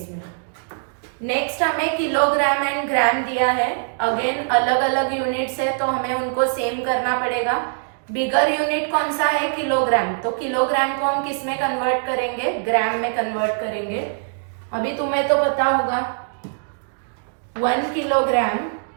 नेक्स्ट हमें किलोग्राम एंड ग्राम दिया है। अगेन अलग अलग यूनिट्स है तो हमें उनको सेम करना पड़ेगा। बिगर यूनिट कौन सा है किलोग्राम, तो किलोग्राम को हम किस में कन्वर्ट करेंगे ग्राम में कन्वर्ट करेंगे। अभी तुम्हें तो पता होगा 1 किलोग्राम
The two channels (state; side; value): silent; left; digital silence